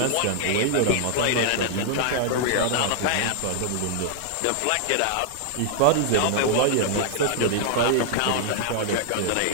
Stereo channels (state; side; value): different; both; correlation 0.00